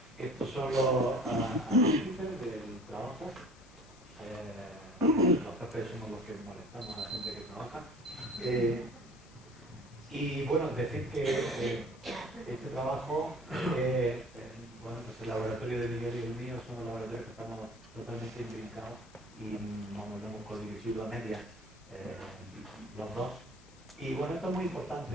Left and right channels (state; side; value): noise; left; hiss, 25 dB below the sound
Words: Estos son los índices del trabajo. Los jefes somos los que molestamos a la gente que trabaja. Y bueno, decir que este trabajo, bueno, pues el laboratorio de Miguel y el mío son los laboratorios que estamos totalmente imbricados y vamos, lo hemos codirigido a medias los dos. Y bueno, esto es muy